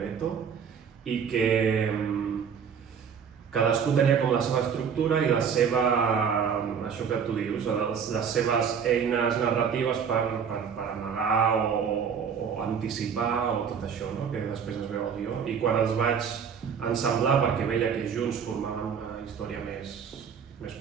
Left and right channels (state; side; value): quieter; left; 7.0 dB